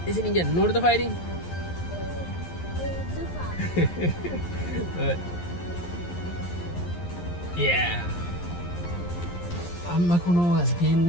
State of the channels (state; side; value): late; right; 11 ms